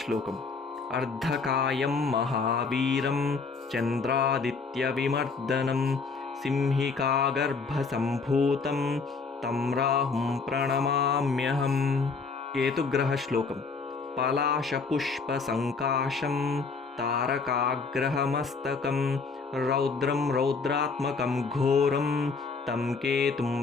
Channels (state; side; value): quieter; right; 4.6 dB